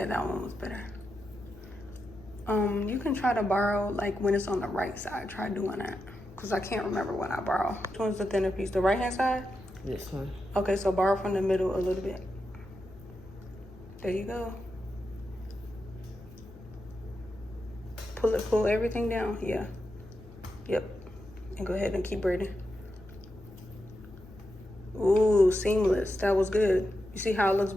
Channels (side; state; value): left; noise; hum, 20 dB below the sound